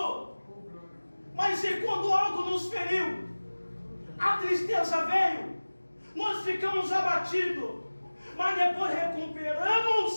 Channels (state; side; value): inverted; both; correlation -1.00